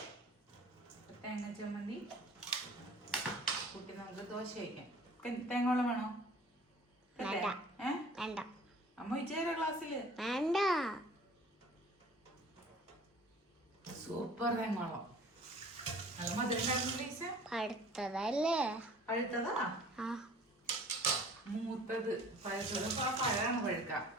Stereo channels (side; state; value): both; normal; correlation 0.49